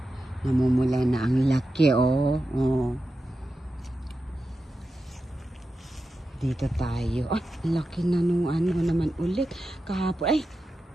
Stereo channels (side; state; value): both; normal; correlation 0.91